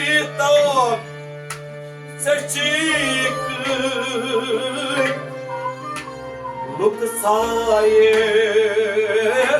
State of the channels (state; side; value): identical; both; correlation 1.00